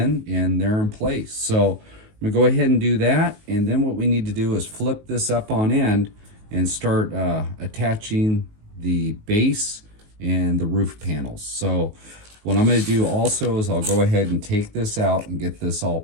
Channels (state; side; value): late; left; 19 ms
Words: and they're in place. So I'm gonna go ahead and do that. And then what we need to do is flip this up on end and start attaching the base and the roof panels. So what I'm going to do also is I'll go ahead and take this out and get this all